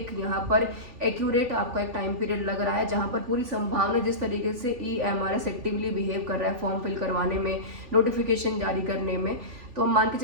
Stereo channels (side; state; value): left; late; 3.4 ms